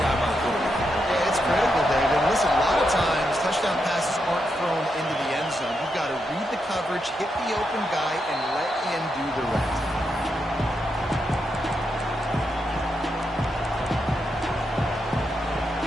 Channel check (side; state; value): both; normal; correlation 0.83